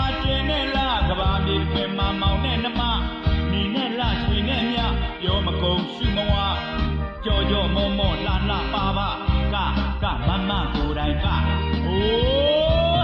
ာကျင်းနေလားကဘာမြေတွင်မှာမောင်နဲ့နှမနေနဲ့လားရွှေနဲ့မြပြောမကုန်ရှုမဝကြော်ကြော်မောမောလှလှပါပါကမမကိုယ်တိုင်ကအို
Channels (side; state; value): both; identical; correlation 1.00